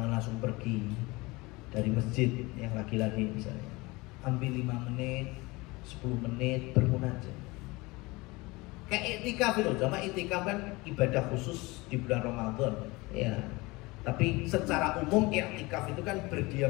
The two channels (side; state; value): right; quieter; 23.3 dB